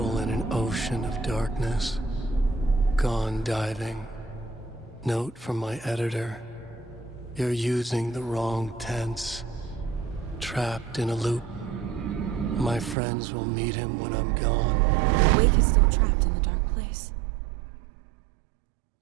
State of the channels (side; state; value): left; drops out; at 13.0 s